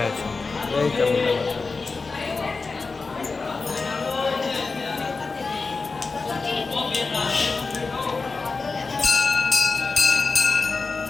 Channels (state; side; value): quieter; right; 4.1 dB